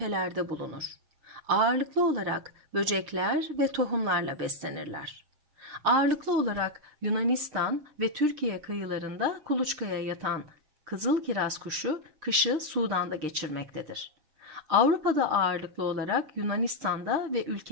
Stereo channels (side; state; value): left; late; 6.6 ms